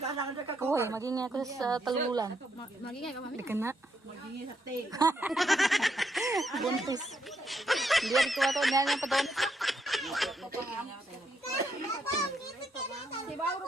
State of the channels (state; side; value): normal; both; correlation 0.77